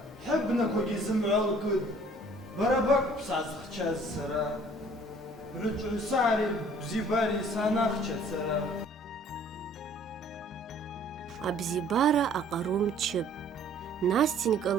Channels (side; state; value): both; normal; correlation 0.55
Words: Хабна когизм алкуд. Барабак псазхчаз сара. Бручусари бзибари санахча сара. Абзибара аҟарум чып. Настенька